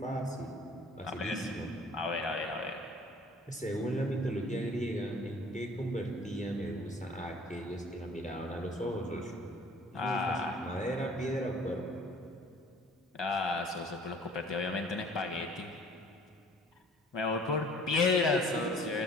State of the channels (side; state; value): both; normal; correlation 0.52